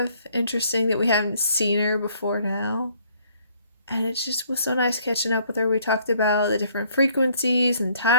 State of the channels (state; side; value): inverted; both; correlation -0.63